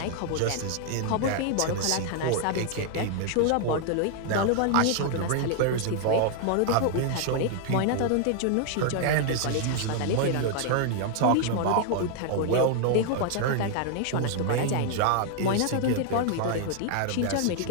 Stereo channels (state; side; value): different; both; correlation 0.00